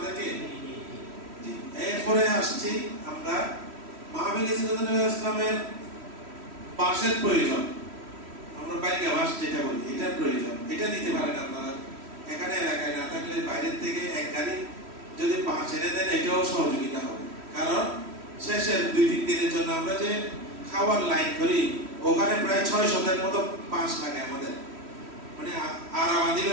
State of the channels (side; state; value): left; late; 3.1 ms